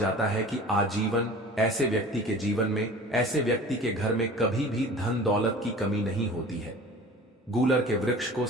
है कि आजीवन ऐसे व्यक्ति के जीवन में, ऐसे व्यक्ति के घर में कभी भी धन दौलत की कमी नहीं होती है। गूलर के वृक्ष को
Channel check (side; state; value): both; normal; correlation 0.41